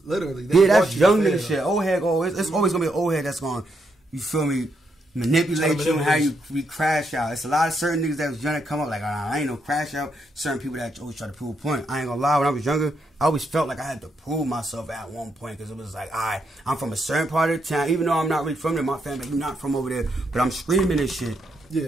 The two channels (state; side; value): normal; both; correlation 0.79